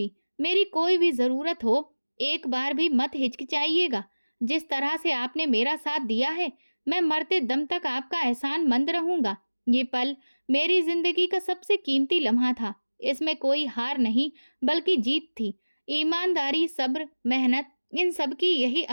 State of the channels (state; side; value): inverted; both; correlation -1.00